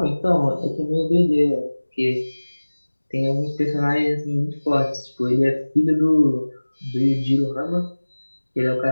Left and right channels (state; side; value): inverted; both; correlation -1.00